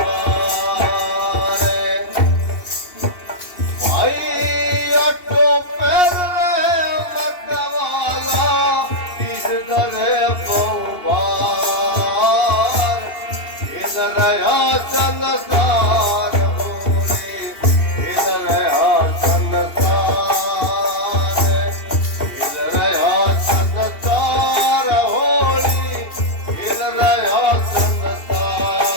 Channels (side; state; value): right; late; 2.7 ms